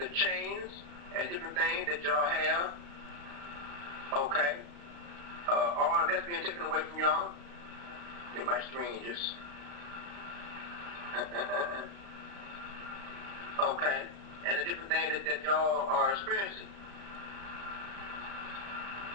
chains and different things that y'all have, okay, all of that's being taken away from y'all. Get my screen just, okay, and the different things that y'all are experiencing.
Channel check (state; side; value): late; left; 35 ms